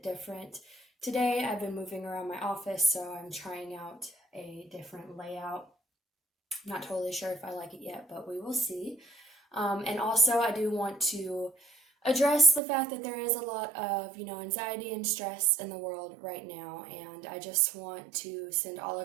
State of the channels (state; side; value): drops out; left; at 12.6 s